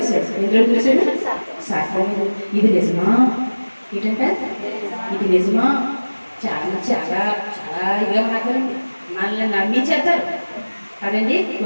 ఎందులో వదిలేశాడు సర్పం. ఇది నిజమా ఏంటంటే ఇది నిజమా చాలా చాలా చాలా ఇదిగా మాట్లాడండి మనల్ని నమ్మించేస్తారు కదండి.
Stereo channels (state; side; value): inverted; both; correlation -1.00